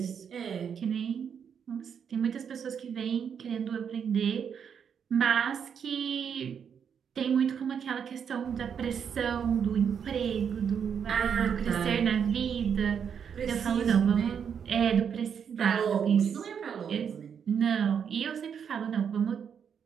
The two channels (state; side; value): quieter; left; 7.5 dB